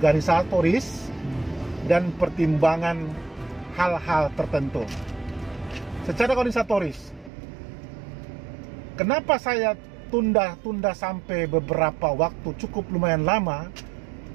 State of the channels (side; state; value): left; drops out; at 7.3 s